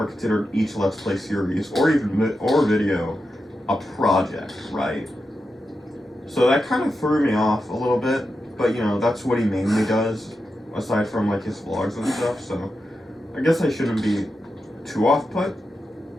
considered each Let's Play series or video a project, right? So that kind of threw me off a little bit, but you know, that's what he mainly does, aside from like his vlogs and stuff, so I guess I shouldn't be too off-put,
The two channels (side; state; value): both; normal; correlation 0.89